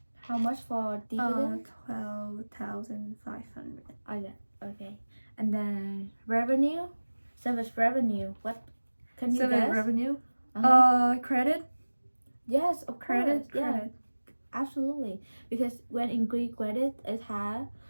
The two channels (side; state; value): both; inverted; correlation -1.00